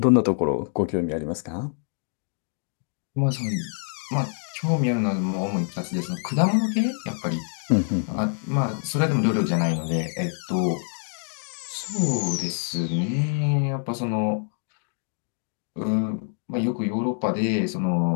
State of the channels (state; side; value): silent; right; 61 dB below the other